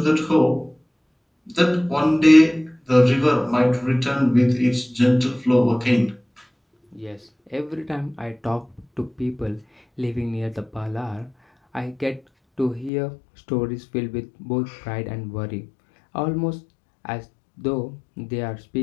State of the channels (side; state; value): right; drops out; at 12.9 s